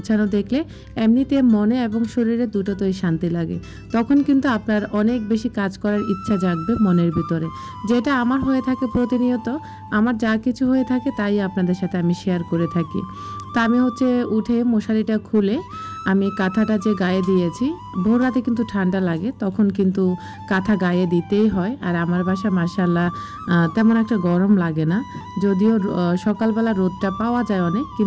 দেখলে এমনিতে মনে এবং শরীরে দুটোতেই শান্তি লাগে, তখন কিন্তু আপনার অনেক বেশি কাজ করার ইচ্ছা জাগবে মনের ভিতরে। যেটা আমার হয়ে থাকে প্রতিনিয়ত, আমার যা কিছু হয়ে থাকে তাই আপনাদের সাথে আমি শেয়ার করে থাকি। তা আমি হচ্ছে উঠে মশারিটা খুলে আমি কাঁথাটা যে গায়ে দিয়েছি, ভোর রাতে কিন্তু ঠান্ডা লাগে, তখন কিন্তু কাঁথা গায়ে দিতেই হয়। আর আমার বাসা মাশাআল্লাহ তেমন একটা গরম লাগে না, যদিও সকালবেলা রোদটা পাওয়া যায় অনেক,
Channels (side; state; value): both; identical; correlation 1.00